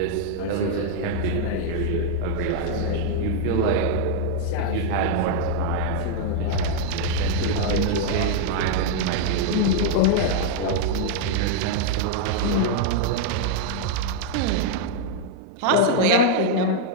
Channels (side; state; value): both; different; correlation 0.00